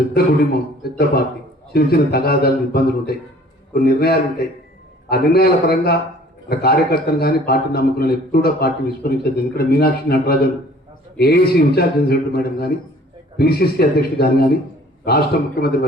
కుటుంబం, పెద్ద పార్టీ, చిన్న తగాదాలు, ఇబ్బందులు ఉంటాయి, కొన్ని నిర్ణయాలు ఉంటాయి. ఆ నిర్ణయాల పరంగా కార్యకర్తలు కానీ పార్టీ నమ్ముకున్న ఎప్పుడు కూడా పార్టీ విస్మరించదు. ఎందుకంటే Meenakshi Natarajan AICC in-charge general madam కానీ, పిసిసి అధ్యక్షుడు కానీ, రాష్ట్ర ముఖ్యమంత్రి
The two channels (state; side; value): normal; both; correlation 0.53